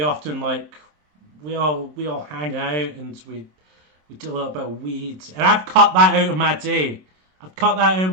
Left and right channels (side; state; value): left; late; 27 ms